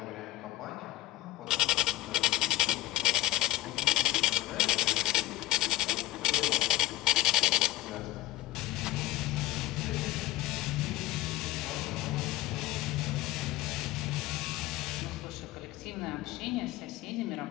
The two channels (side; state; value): right; quieter; 17.3 dB